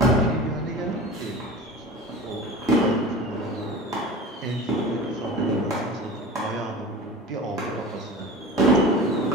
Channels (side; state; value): both; normal; correlation 0.35